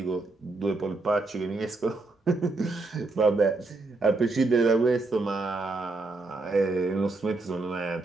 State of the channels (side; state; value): left; quieter; 3.4 dB